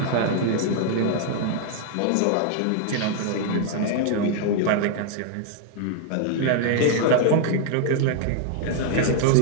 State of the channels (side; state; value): both; different; correlation 0.00